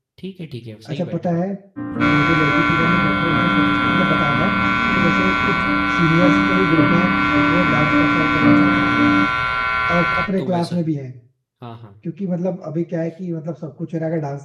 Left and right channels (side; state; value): both; identical; correlation 1.00